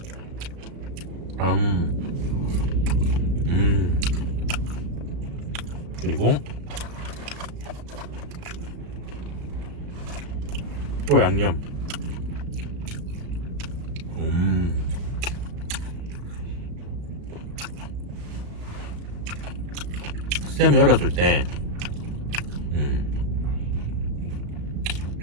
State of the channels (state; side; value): late; left; 35 ms